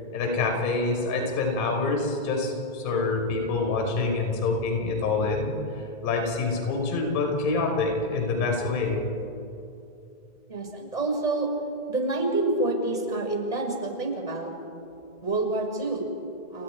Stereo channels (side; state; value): right; late; 1.6 ms